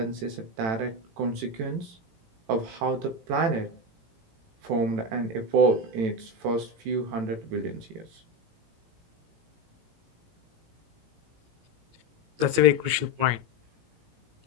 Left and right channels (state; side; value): late; left; 17 ms